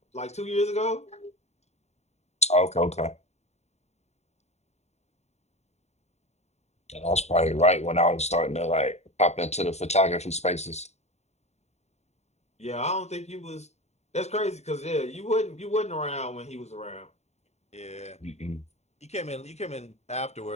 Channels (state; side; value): late; right; 0.32 ms